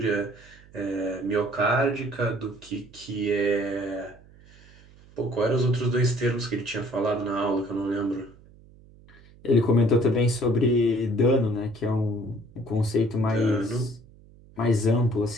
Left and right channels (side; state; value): right; noise; hum, 24 dB below the sound